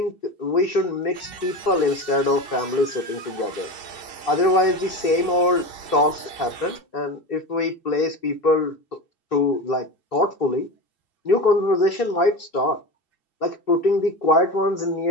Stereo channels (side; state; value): right; late; 2.7 ms